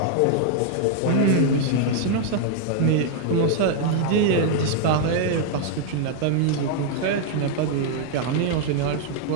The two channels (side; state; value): both; different; correlation 0.00